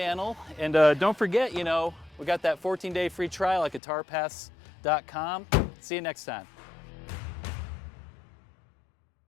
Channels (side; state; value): right; drops out; at 3.8 s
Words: And don't forget, you know, we got that 14-day free trial at guitarpass.com. See you next time.